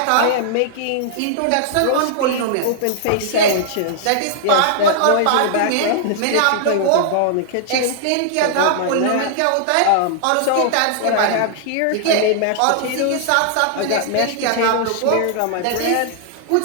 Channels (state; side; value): different; both; correlation -0.01